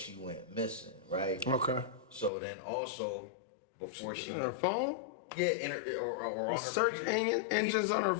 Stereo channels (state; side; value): drops out; right; at 2.3 s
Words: went missing, right? Okay. So then also before she On her phone? yeah, or on her Search computer. engines on her